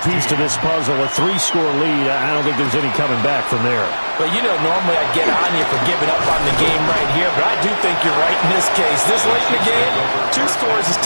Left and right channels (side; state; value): both; inverted; correlation -1.00